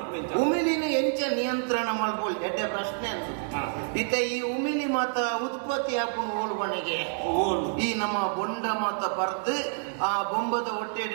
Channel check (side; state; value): left; silent; digital silence